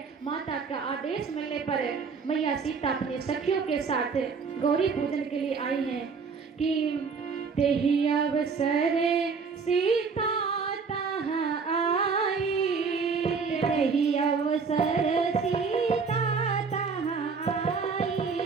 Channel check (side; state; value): left; quieter; 5.3 dB